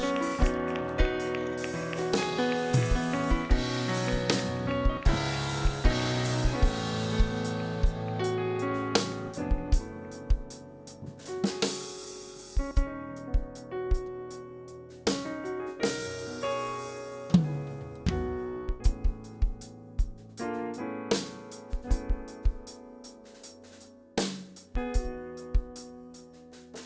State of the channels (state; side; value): identical; both; correlation 1.00